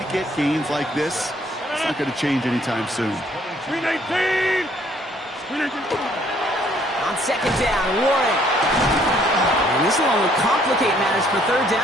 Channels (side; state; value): both; normal; correlation 0.64